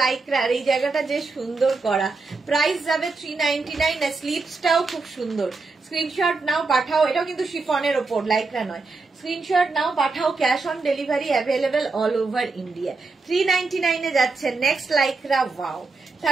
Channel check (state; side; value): quieter; left; 3.9 dB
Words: লাইক্রার, এই জায়গাটা যে সুন্দর করা। প্রাইস যাবে 399। স্লিভসটাও খুব সুন্দর, স্ক্রিনশট নাও পাঠাও, এটাও কিন্তু শিফনের ওপর, লাইকরা নয়। স্ক্রিনশট নাও পাঠাও, cash on delivery available all over India. 399 এ যাচ্ছে next লাইকরা। Wow,